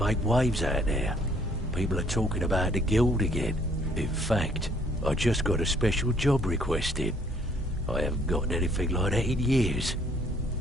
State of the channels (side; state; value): both; normal; correlation 0.63